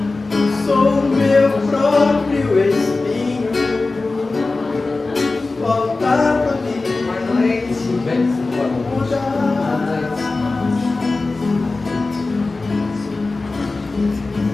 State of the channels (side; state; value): right; quieter; 3.5 dB